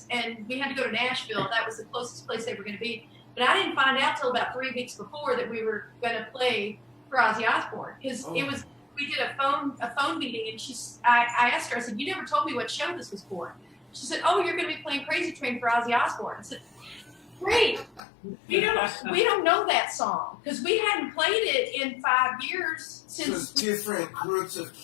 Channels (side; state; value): right; drops out; at 18.0 s